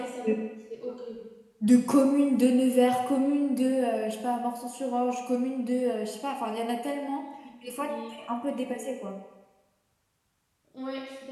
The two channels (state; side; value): identical; both; correlation 1.00